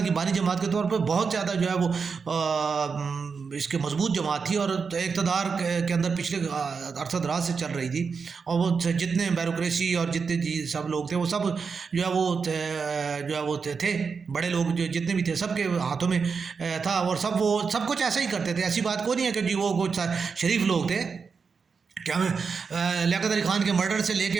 کی بانی جماعت کے طور پہ بہت زیادہ جو ہے وہ اس کے مضبوط جماعت تھی، اور اقتدار کے اندر پچھلے عرصہ دراز سے چل رہی تھی، اور وہ جتنے بیوروکریسی اور جتنے سب لوگ تھے وہ سب جو ہے وہ تھے بڑے لوگ، جو جتنے بھی تھے سب کے ہاتھوں میں تھا، اور وہ سب کچھ ایسا ہی کرتے تھے، ایسی بات کوئی نہیں ہے کہ جی وہ کچھ شریف لوگ تھے۔ کیا لیاقت علی خان کے مرڈر سے لے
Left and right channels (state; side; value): quieter; left; 5.4 dB